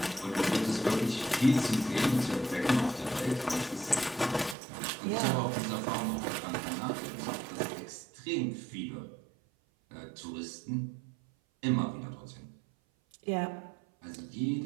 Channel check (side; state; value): left; drops out; at 4.5 s